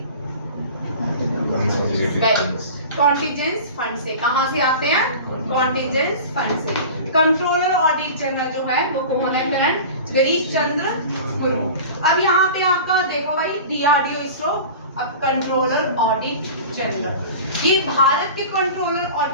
कॉन्टिजेंस फंड से। कहाँ से आते हैं? कॉन्टिजेंस फंड से। कंट्रोलर ऑडिट जनरल जो है वो कौन है? करंट गिरीश चंद्र मुर्मू। अब यहाँ पे आपका देखो भाई, DRDO इसरो, अब कंट्रोलर ऑडिट जनरल, ये भारत के कंट्रोलर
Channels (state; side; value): inverted; both; correlation -0.36